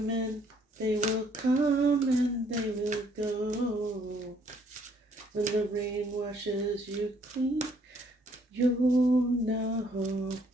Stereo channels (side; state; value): both; normal; correlation 0.65